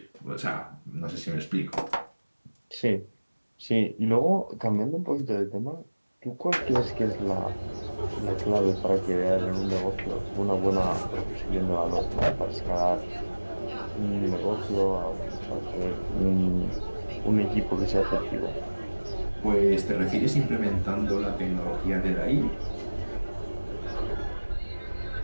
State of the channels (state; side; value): inverted; both; correlation -1.00